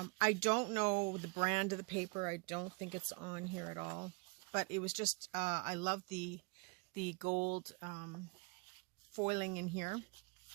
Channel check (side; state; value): left; quieter; 29.7 dB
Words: don't know the brand of the paper. I don't think it's on here at all. But it was just, I love the gold foiling in here.